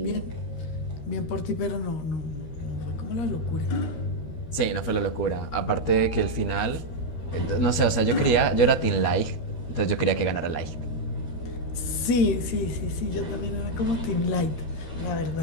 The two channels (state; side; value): late; right; 13 ms